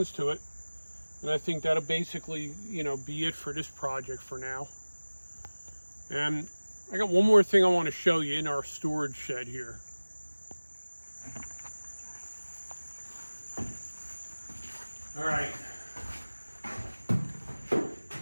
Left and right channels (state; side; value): inverted; both; correlation -1.00